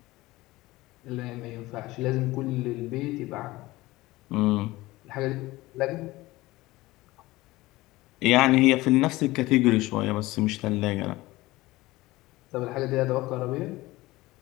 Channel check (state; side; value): quieter; right; 19.1 dB